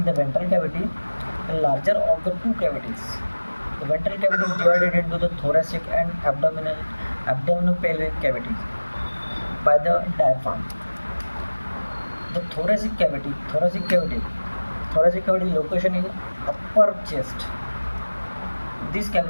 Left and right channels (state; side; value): inverted; both; correlation -1.00